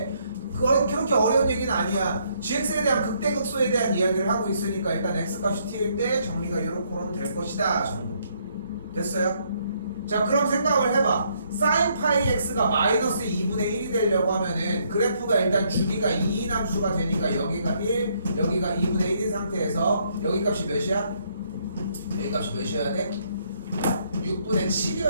그렇게 어려운 얘기는 아니야. gx에 대한 극대극소에 대한 이야기를 하고 있으니까 일단 x값이 t일 때 정리가 이렇게 될 것이다 정도. 됐어요? 자 그럼 생각을 해봐. sin 파이 x가 마이너스 2분의 1이 되려고 하면은 그래프가 일단 주기가 2인 함수가 되니까 여기가 1, 여기가 2분의 1인 상태에서 여기 값이 몇이야? 여기 값이 몇이어야 돼? 6분의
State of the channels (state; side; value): inverted; both; correlation -0.70